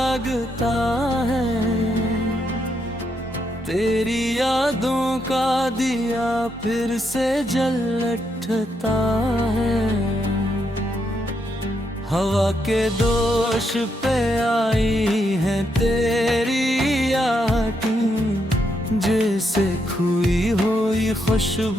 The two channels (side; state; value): both; normal; correlation 0.79